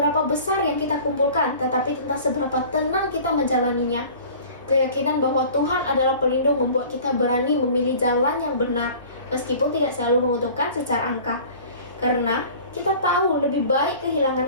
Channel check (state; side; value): inverted; both; correlation -0.44